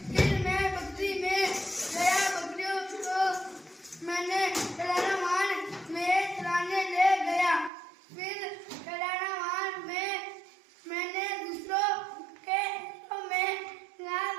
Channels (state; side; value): drops out; left; at 7.7 s